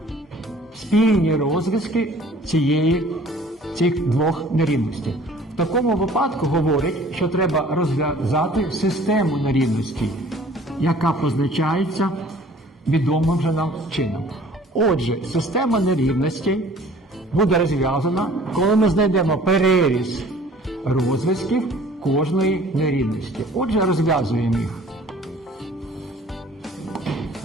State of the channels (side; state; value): both; normal; correlation 0.51